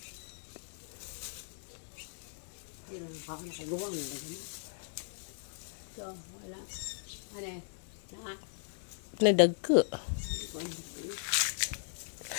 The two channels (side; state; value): right; silent; digital silence